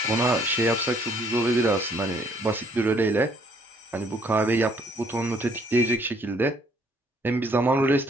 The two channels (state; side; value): normal; both; correlation 0.64